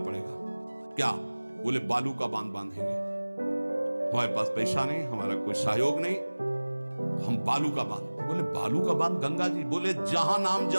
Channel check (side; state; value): both; inverted; correlation -1.00